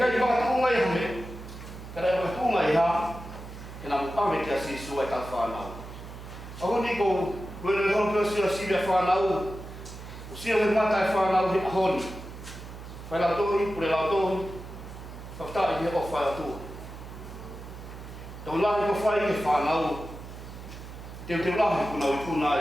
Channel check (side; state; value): right; noise; hum, 13 dB below the sound